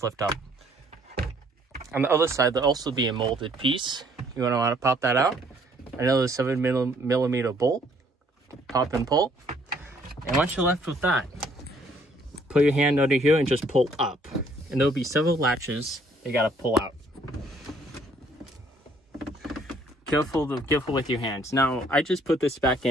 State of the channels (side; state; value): both; normal; correlation 0.63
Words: lift up. On the other side, there'll also be a molded piece. You're going to want to pop that out. Another 7mm bolt. Pop and pull. And once you're left with that, put your hand under here and just pull up. And there'll be several latches you got to pull out. Careful with your hands. Now, I just put this back